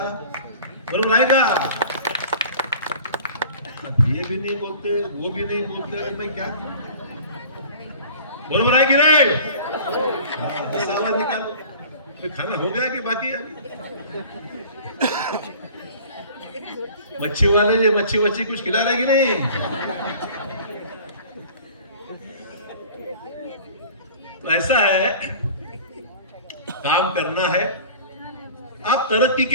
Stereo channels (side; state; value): both; inverted; correlation -0.44